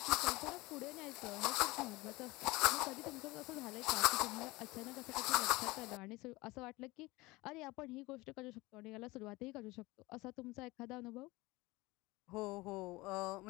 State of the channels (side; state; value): right; quieter; 21.7 dB